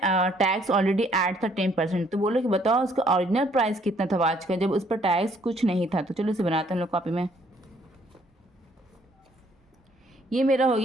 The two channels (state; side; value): normal; both; correlation 0.65